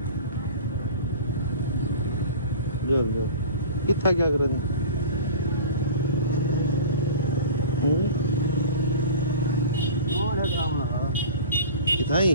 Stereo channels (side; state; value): both; inverted; correlation -0.38